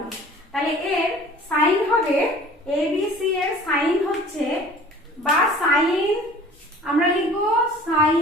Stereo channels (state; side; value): normal; both; correlation 0.47